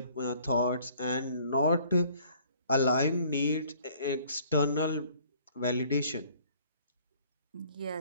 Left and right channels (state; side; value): inverted; both; correlation -0.57